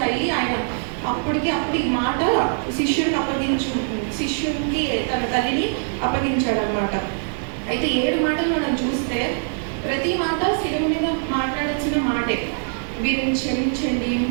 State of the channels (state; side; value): silent; left; digital silence